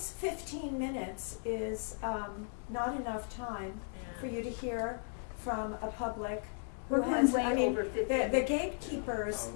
15 minutes is not enough time for you to hear from a public who We're has, going way I mean, over 15 the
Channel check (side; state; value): right; silent; 54 dB below the other